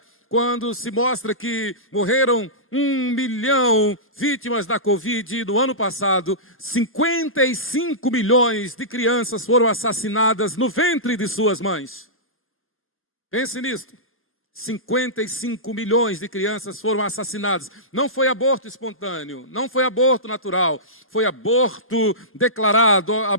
quando se mostra que morreram 1 milhão vítimas da Covid no ano passado, 55 milhões de crianças foram assassinadas no ventre de suas mães. Pense nisso. 55 milhões de crianças foram assassinadas. Não foi aborto espontâneo, não foi aborto natural, foi aborto declarado,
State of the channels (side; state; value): both; normal; correlation -0.18